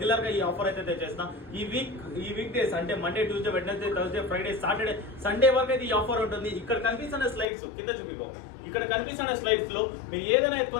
గా ఈ ఆఫర్ అయితే తెచ్చేస్తాం. ఈ వీక్ డేస్ అంటే Monday, Tuesday, Wednesday, Thursday, Friday, Saturday, Sunday వరకు అయితే ఈ ఆఫర్ ఉంటుంది. ఇక్కడ కనిపిస్తున్న స్లైడ్స్ కింద చూపికో. ఇక్కడ కనిపిస్తున్న స్లైడ్స్ లో మీరు ఏదైనా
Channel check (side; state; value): right; drops out; at 7.5 s